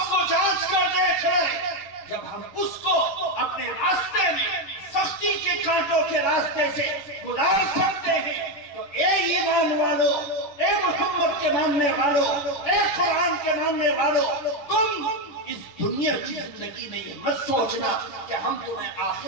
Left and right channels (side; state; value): right; late; 10 ms